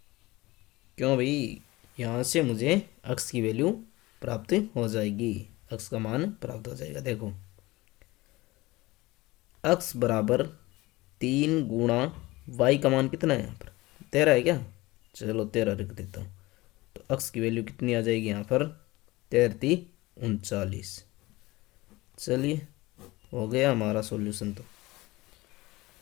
क्यों भाई, यहाँ से मुझे अक्स की वैल्यू प्राप्त हो जाएगी, अक्स का मान प्राप्त हो जाएगा। देखो अक्स बराबर 3 गुणा वाई का मान कितना है यहाँ पर 13 है क्या। चलो 13 रख देता हूँ। तो अक्स की वैल्यू कितनी आ जाएगी यहाँ पर 13 39। चलिए हो गया हमारा सॉल्यूशन। तो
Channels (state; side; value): quieter; right; 20.4 dB